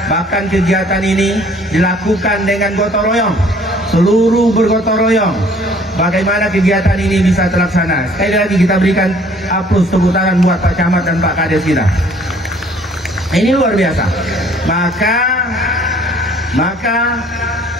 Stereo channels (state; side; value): normal; both; correlation 0.57